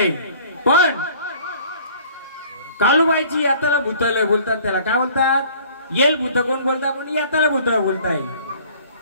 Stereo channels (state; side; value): inverted; both; correlation -0.52